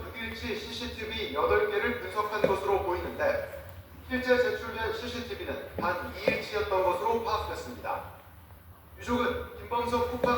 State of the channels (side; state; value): both; identical; correlation 1.00